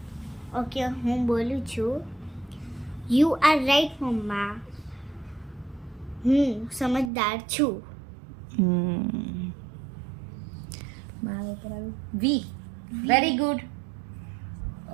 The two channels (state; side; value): drops out; left; at 7.1 s